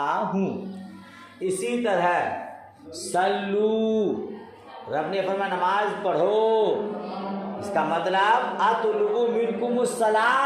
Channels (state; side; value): identical; both; correlation 1.00